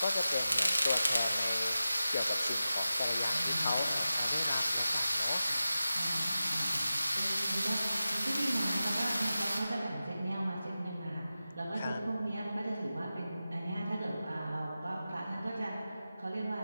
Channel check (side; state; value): both; inverted; correlation -0.94